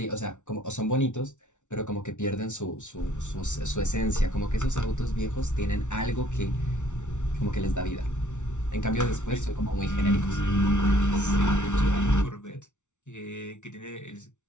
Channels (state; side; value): late; right; 0.85 ms